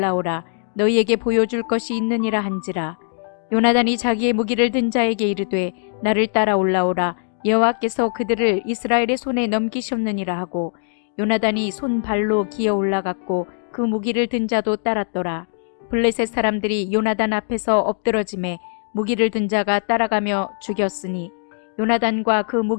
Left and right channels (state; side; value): silent; right; digital silence